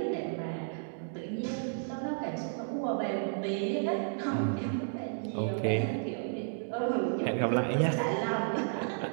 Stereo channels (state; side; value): silent; left; digital silence